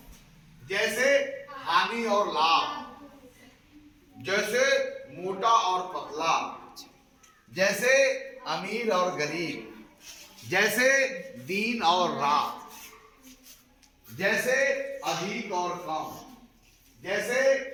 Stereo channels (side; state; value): both; identical; correlation 1.00